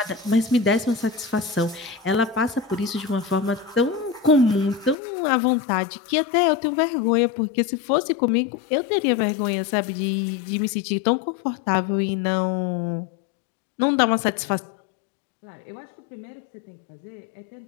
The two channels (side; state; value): right; drops out; at 5.0 s